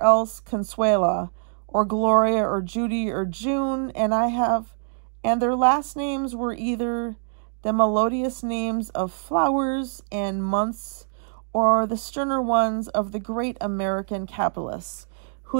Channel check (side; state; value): left; silent; digital silence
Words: else Consuela, or Gloria, or Judy, or June, and their last names were either the melodious names of flowers and months, or the sterner ones of the great American capitalists,